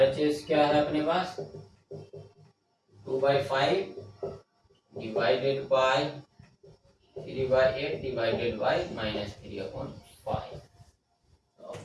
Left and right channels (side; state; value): both; identical; correlation 1.00